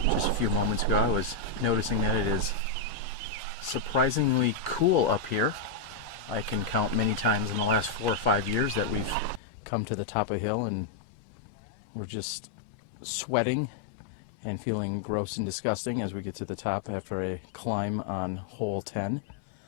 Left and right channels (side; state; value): right; drops out; at 9.4 s